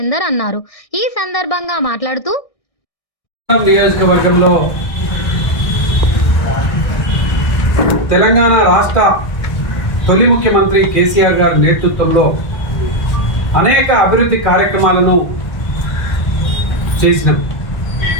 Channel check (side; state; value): right; late; 1.4 ms